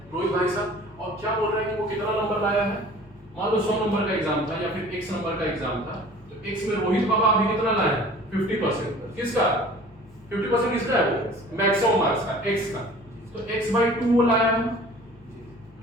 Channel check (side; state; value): both; normal; correlation 0.46